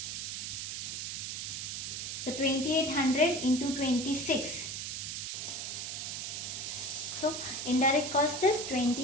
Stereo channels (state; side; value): noise; right; hiss, 4 dB below the sound